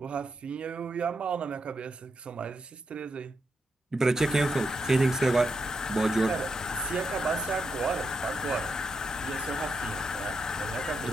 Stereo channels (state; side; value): normal; both; correlation 0.82